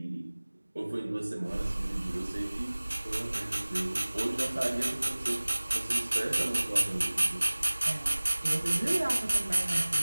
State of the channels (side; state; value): both; inverted; correlation -1.00